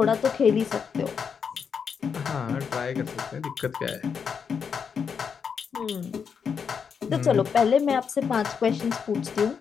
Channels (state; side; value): quieter; right; 6.5 dB